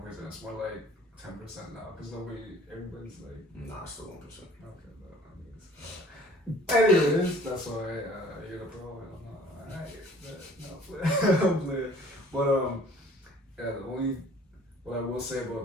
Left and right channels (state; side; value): normal; both; correlation 0.52